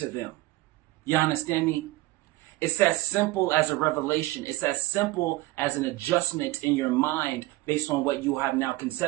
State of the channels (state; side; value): quieter; left; 19.5 dB